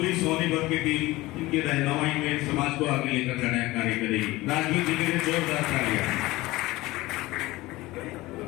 सोनीपत की टीम इनकी रहनुमाई में समाज को आगे लेकर जाने का कार्य करेगी। राजवीर जी के लिए जोरदार तालियां।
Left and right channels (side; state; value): right; quieter; 19.4 dB